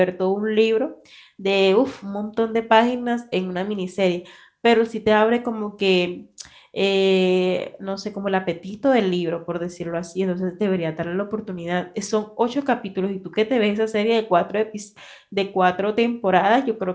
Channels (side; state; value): both; identical; correlation 1.00